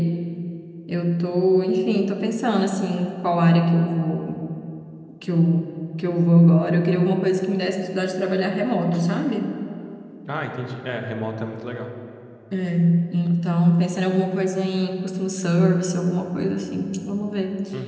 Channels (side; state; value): both; identical; correlation 1.00